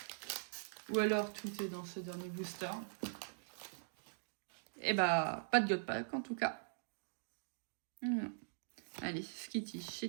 Ou alors tout est dans ce dernier booster? Et pas de God Pack en tout cas. Allez, Skitty,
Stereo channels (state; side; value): silent; left; digital silence